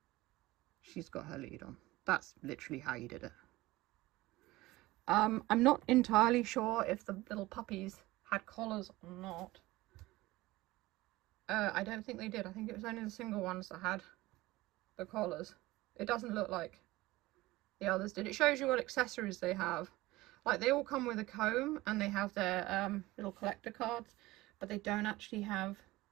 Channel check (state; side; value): quieter; left; 19.0 dB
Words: She's got her lead on. That's literally how you did it. I'm not entirely sure if the little puppies had collars or not. I don't think they did. I think it was only the single ones that had the collars. It doesn't look like the others did. It shows you what accessories they have. Like, they all come with a comb and they have their little collector cards, but they don't actually have